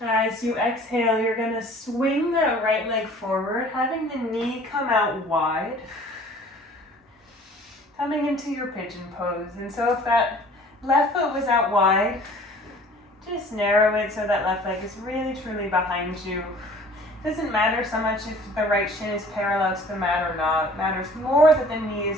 As you exhale, you're going to swing that right leg forward, having the knee come out wide. Coming into your pigeon pose. And so if that left foot was out wide, just narrow it so that left leg is really truly behind you. Doesn't matter so much if the right shin is parallel to the mat or not. It matters more that the knee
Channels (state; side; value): normal; both; correlation 0.50